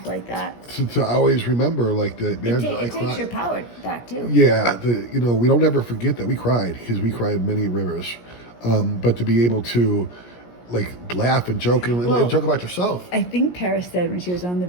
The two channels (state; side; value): late; right; 17 ms